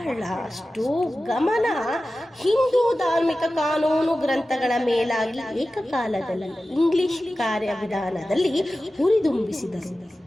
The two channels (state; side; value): normal; both; correlation 0.95